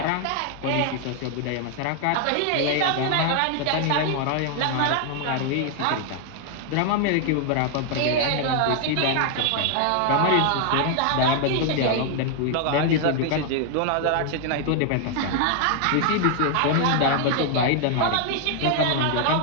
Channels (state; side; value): different; both; correlation 0.00